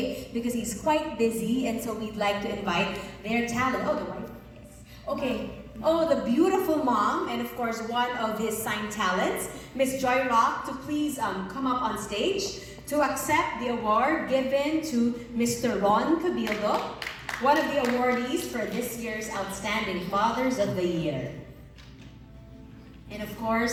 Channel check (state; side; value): identical; both; correlation 1.00